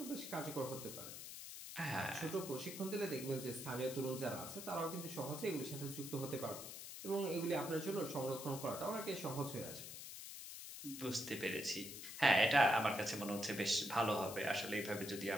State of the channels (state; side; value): noise; left; hiss, 9 dB below the sound